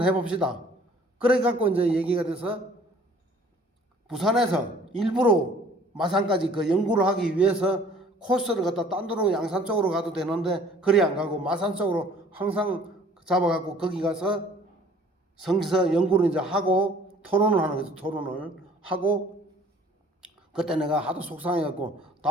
해봅시다. 그래갖고 이제 얘기가 돼서 부산에서 일부러 마산까지 그 연구를 하기 위해서 코스를 갖다 딴 데로 양산 쪽으로 가도 되는데 그리 안 가고 마산 쪽으로 항상 잡아갖고 거기 가서 성서 연구를 이제 하고 토론을 하는 거죠. 토론을 하고 그때 내가 하도 속상해갖고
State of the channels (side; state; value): both; normal; correlation 0.54